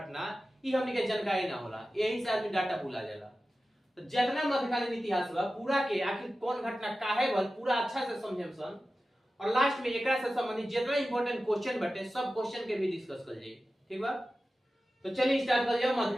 ई हमनी के जानकारी ना होला, यही से आदमी डाटा भुला जाला। तो जितना मध्यकालीन इतिहास बा पूरा के आखिर कौन घटना काहे होल पूरा अच्छा से समझे सन, और लास्ट में एकरा से संबंधित जितना इंपॉर्टेंट क्वेश्चन बटे सब क्वेश्चन के भी डिस्कस कर जाई। ठीक बा, तो चलिए स्टार्ट कर जाओ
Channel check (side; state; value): both; normal; correlation 0.94